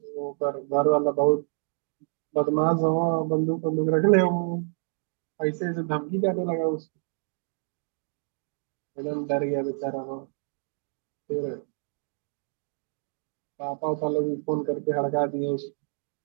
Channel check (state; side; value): silent; left; digital silence